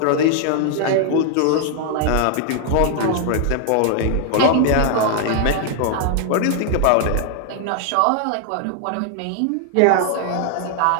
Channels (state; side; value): different; both; correlation 0.00